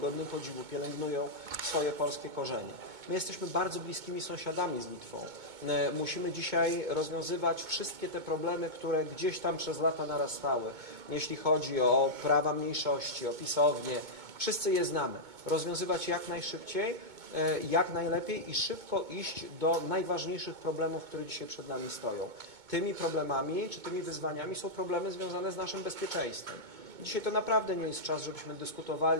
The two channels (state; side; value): late; left; 2.2 ms